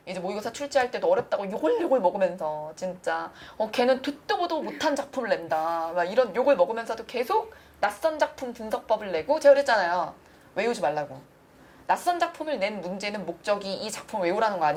이제 모의고사 출제할 때도 어렵다고 요걸 먹으면서 진짜 걔는 듣도 보도 못한 작품을 낸다. 막 이런 욕을 먹으면서도 계속 낯선 작품 분석법을 내고 제가 그랬잖아요. 외우지 말라고. 낯선 작품을 낸 문제는 목적이 이 작품을 외우라는 거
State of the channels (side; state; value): both; identical; correlation 1.00